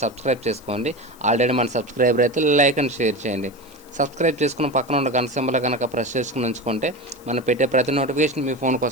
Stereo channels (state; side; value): noise; left; hiss, 25 dB below the sound